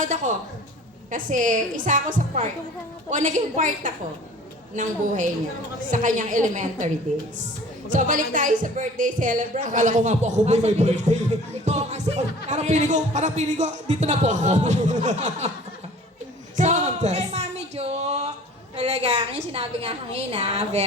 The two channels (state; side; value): normal; both; correlation 0.46